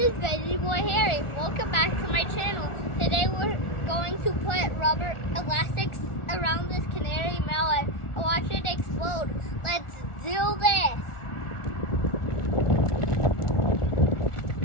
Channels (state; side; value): late; right; 1.4 ms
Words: Veggie Boy Harry. Welcome back to my channel. Today we're going to put rubber elastics around this canary melon and watch it explode. Let's do this.